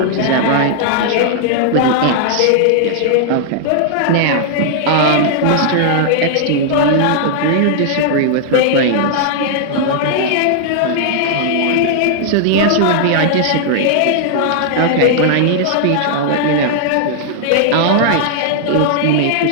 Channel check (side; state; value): both; different; correlation -0.01